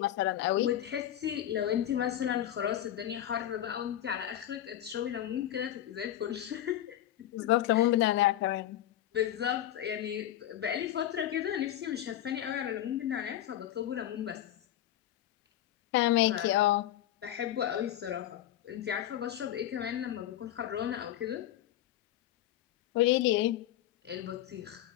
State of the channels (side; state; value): right; quieter; 12.2 dB